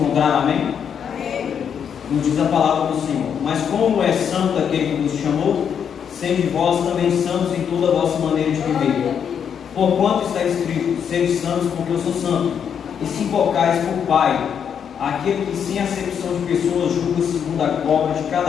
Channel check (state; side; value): quieter; right; 7.8 dB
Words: amém? Nos diz a palavra do Senhor: mas como é santo aquele que vos chamou, sede vós também santos em toda a vossa maneira de viver. Porquanto está escrito: sede santos, porque eu sou santo. E se invocais por Pai, aquele que sem acepção de pessoas julga segundo a obra de